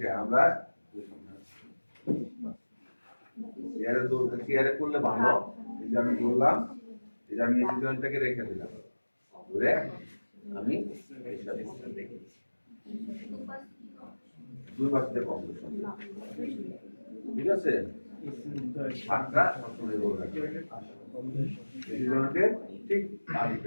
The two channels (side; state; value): both; inverted; correlation -1.00